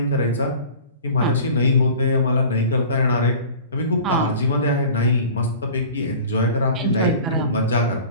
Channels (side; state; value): both; inverted; correlation -0.41